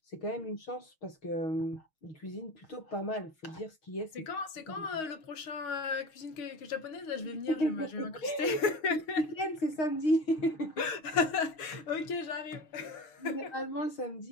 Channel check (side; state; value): right; late; 6.4 ms